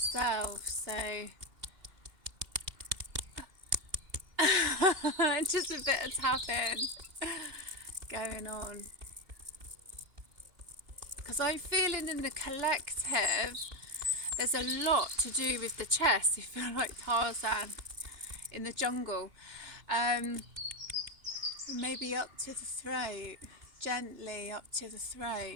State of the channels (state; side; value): late; left; 2.9 ms